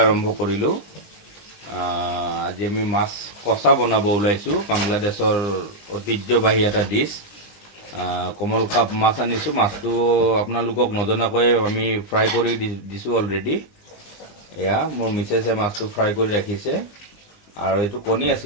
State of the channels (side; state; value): right; late; 20 ms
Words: আৰম্ভ কৰিলোঁ। আজি আমি মাছ কচা বনাব ওলাইছোঁ। বাংলাদেশৰ ঐতিহ্যবাহী এটা ডিছ। কমল কাপ মাছ আনিছোঁ। মাছটো আপোনালোকক নজনাকৈ আমি ফ্ৰাই কৰি দিছোঁ অলৰেডি। এয়া মোৰ মিছেছে মাছটো ফ্ৰাই কৰি ৰাখিছে। আৰু এইটো কণী